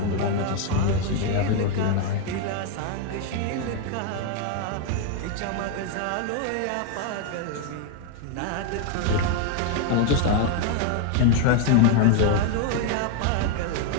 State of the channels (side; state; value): both; different; correlation 0.01